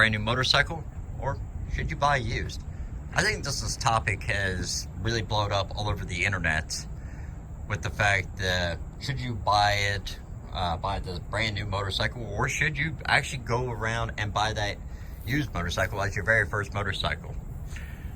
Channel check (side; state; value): both; identical; correlation 1.00